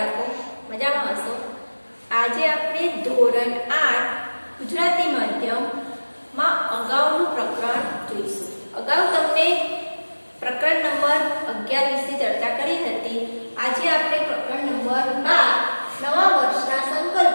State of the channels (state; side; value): inverted; both; correlation -1.00